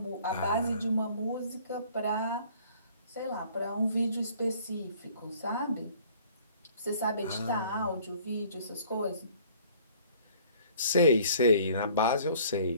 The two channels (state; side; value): inverted; both; correlation -0.55